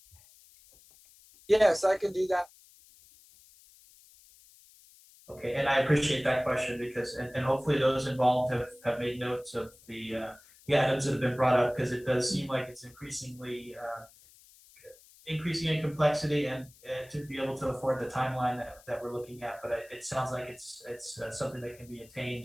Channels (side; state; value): left; noise; hiss, 25 dB below the sound